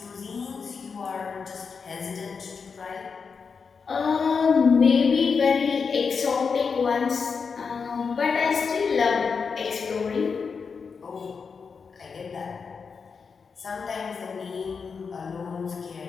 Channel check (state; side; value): quieter; right; 5.5 dB